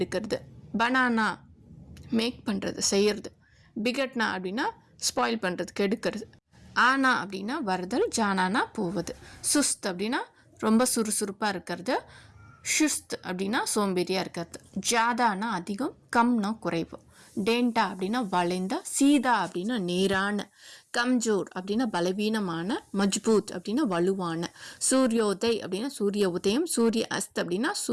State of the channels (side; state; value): both; identical; correlation 1.00